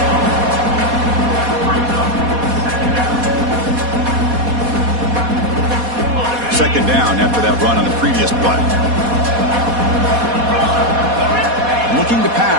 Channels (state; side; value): late; left; 4.2 ms